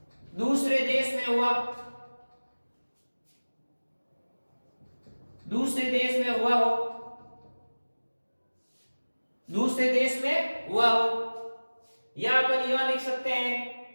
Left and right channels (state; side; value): inverted; both; correlation -1.00